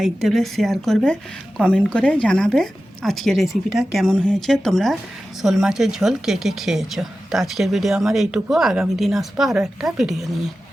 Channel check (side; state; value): both; normal; correlation 0.93